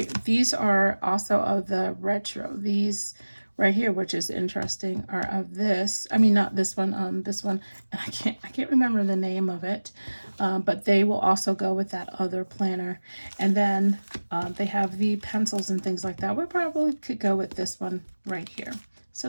these are also of the retro. These right here, which is interesting, are of this. I mean, not this one. This one, and I can't remember the name of it. But they will also go with that other planner. And then they have the pencils and things like that. We probably could go with this one right here.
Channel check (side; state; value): both; inverted; correlation -1.00